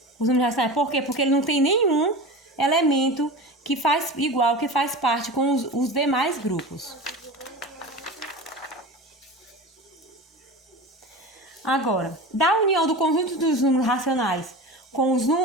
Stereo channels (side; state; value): both; normal; correlation 0.30